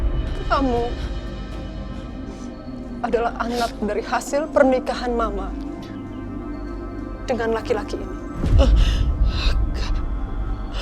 Kamu adalah anak dari hasil pernikahan Mama dengan laki-laki ini.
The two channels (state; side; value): identical; both; correlation 1.00